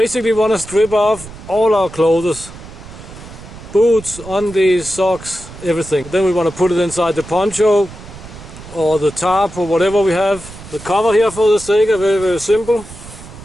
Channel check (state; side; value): noise; right; rumble, 16 dB below the sound